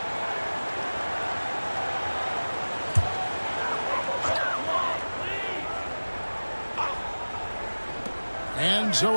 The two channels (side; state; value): both; inverted; correlation -1.00